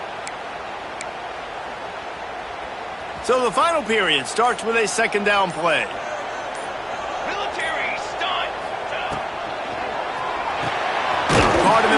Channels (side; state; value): both; identical; correlation 1.00